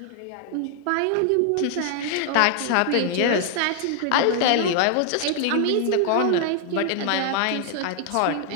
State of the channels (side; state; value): both; different; correlation 0.00